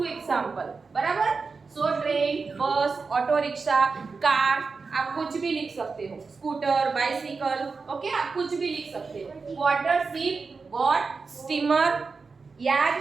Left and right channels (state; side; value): quieter; left; 4.6 dB